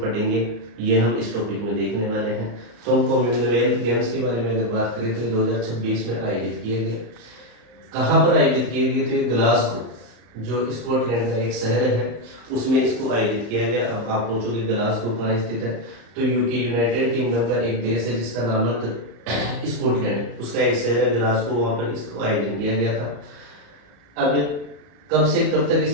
पढ़ेंगे, ये हम इस टॉपिक में देखने वाले हैं। तो हम कॉमनवेल्थ गेम्स के बारे में अगर बात करें तो ये 2026 में आयोजित किए गए। कहाँ पर आयोजित किए गए? तो ये ग्लासगो, जो स्कॉटलैंड का एक शहर है, उसमें इसको आयोजित किया गया। अब आप पूछोगे ग्लासगो कहाँ स्थित है? तो यूके, यूनाइटेड किंगडम का एक देश है जिसका नाम है स्कॉटलैंड, उसका एक शहर है ग्लासगो, वहाँ पर इसको आयोजन किया गया था। अब कब से कब तक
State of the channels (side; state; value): left; late; 34 ms